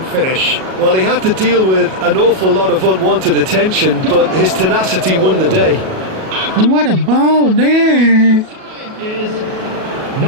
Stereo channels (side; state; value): left; late; 37 ms